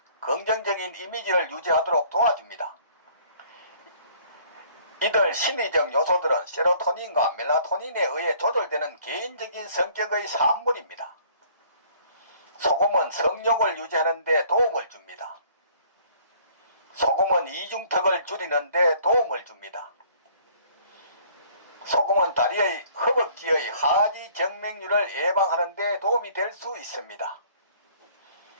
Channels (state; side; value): inverted; both; correlation -0.57